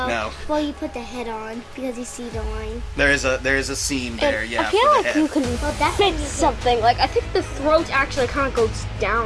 no. Well, you put the head on because you see the line. There is a seam there. And yeah. I feel like you can that's fit something. Like, I think the throat actually kind of goes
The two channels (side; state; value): both; identical; correlation 1.00